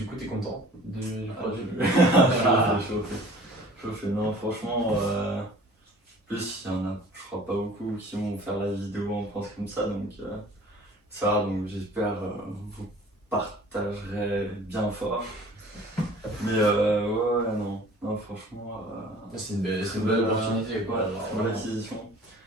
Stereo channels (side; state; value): both; normal; correlation 0.48